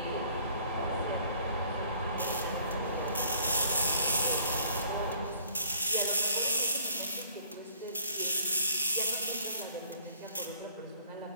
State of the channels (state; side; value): inverted; both; correlation -0.58